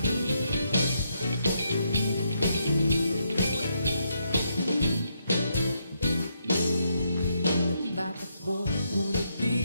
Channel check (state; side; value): inverted; both; correlation -0.78